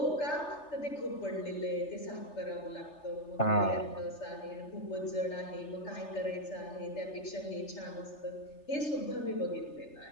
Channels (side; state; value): right; late; 3.3 ms